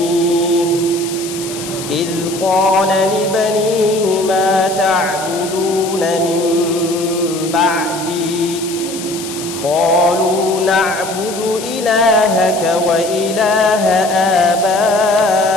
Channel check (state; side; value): noise; left; hiss, 11 dB below the sound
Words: قال لبنيه ما تعبدون من بعدي قالوا نعبد إلهك وإله